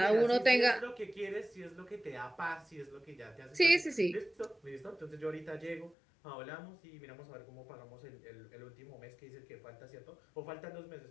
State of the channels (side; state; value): right; drops out; at 6.0 s